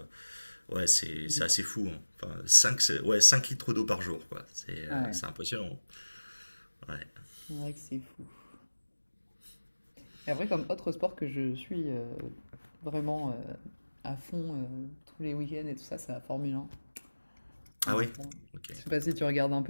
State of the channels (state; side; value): inverted; both; correlation -1.00